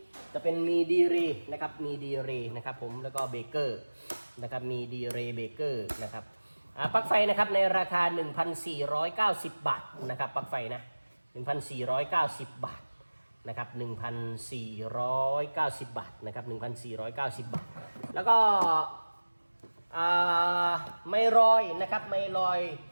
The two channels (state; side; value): inverted; both; correlation -1.00